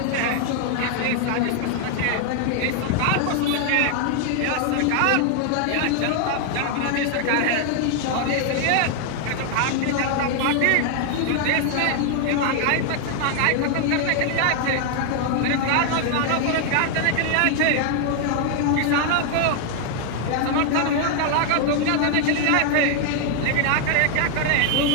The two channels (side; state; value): both; different; correlation 0.00